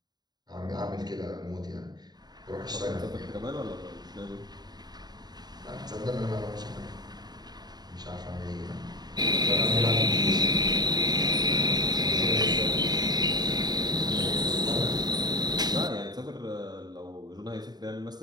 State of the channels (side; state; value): left; late; 0.20 ms